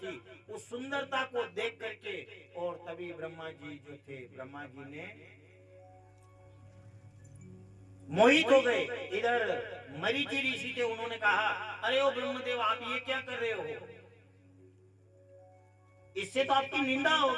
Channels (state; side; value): identical; both; correlation 1.00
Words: उस सुंदरता को देख करके और तभी ब्रह्मा जी जो थे ब्रह्मा जी ने मोहित हो गए। इधर मरीचि ऋषि थे, उन्होंने कहा अरे ओ ब्रह्मदेव आप ये क्या कर रहे हो, इससे तो आपकी निंदा